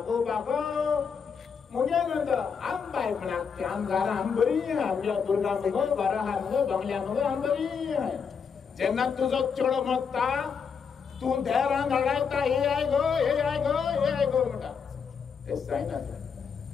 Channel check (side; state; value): right; quieter; 6.2 dB